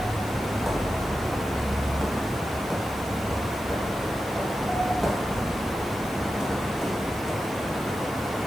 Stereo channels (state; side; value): noise; left; hiss, 19 dB below the sound